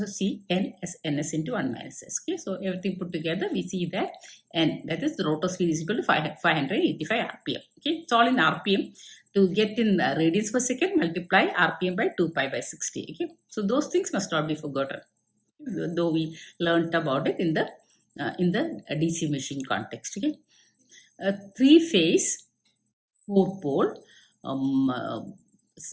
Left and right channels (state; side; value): identical; both; correlation 1.00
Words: see N as Ns into 1 minus S. Okay, so everything put together, we see that N, that is the rotor speed, is equal to 585 RPM. Okay, it's all in RPM. To get in radians per second, multiply RPM by 2 pi by 60. Okay, so those things must not be forgotten, though we learnt about it in the DC machine context. Okay, 3-phase 4-pole